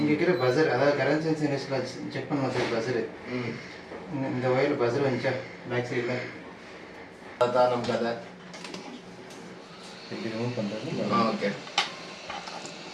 இருக்கிற பஸர், அதாவது கரண்ட் சென்ஸ் இண்டஸ்ட்ரியில் செக் பண்ணுவோம் சார் பஸரு. இந்த ஒயரில் பஸர் வந்துச்சா பேக் சைடில்? அதான் நம்ம கதை. எப்படி ரிமூவ் பண்ணுறது? ஓகே,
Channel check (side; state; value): both; identical; correlation 1.00